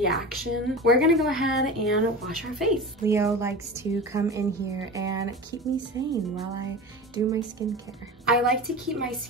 We're gonna go ahead and wash our face. Leo likes to come in here and keep me sane while I do my skincare. I like to keep my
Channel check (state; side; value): normal; both; correlation 0.30